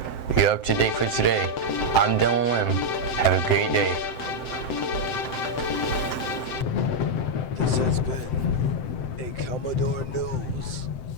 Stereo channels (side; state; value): right; late; 7.8 ms